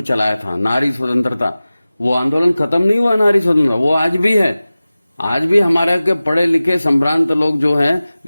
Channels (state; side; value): inverted; both; correlation -0.97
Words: चलाया था, नारी स्वतंत्रता, वो आंदोलन खत्म नहीं हुआ। नारी स्वतंत्रता वो आज भी है। आज भी हमारे के पढ़े लिखे संभ्रांत लोग जो हैं